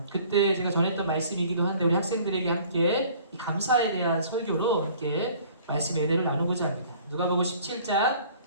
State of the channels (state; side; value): inverted; both; correlation -0.52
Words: 그때 제가 전했던 말씀이기도 한데 우리 학생들에게 함께 이 감사에 대한 설교로 함께 말씀의 은혜를 나누고자 합니다. 누가복음 17장